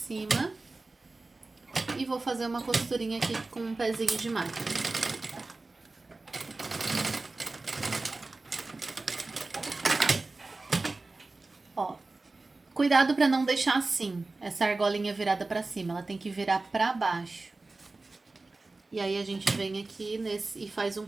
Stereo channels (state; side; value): quieter; left; 3.4 dB